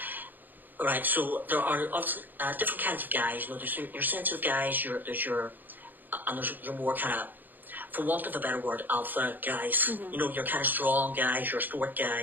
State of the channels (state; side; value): late; left; 0.088 ms